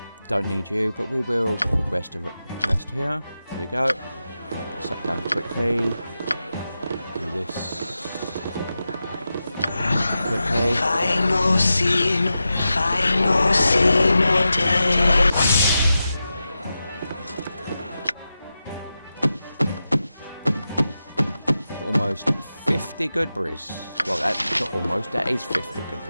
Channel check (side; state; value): both; inverted; correlation -0.91